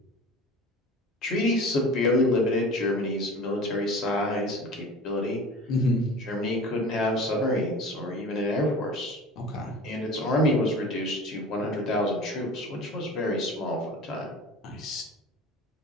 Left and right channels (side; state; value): both; normal; correlation 0.39